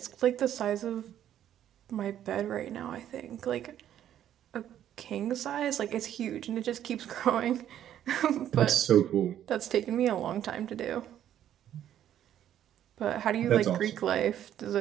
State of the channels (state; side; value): quieter; left; 10.9 dB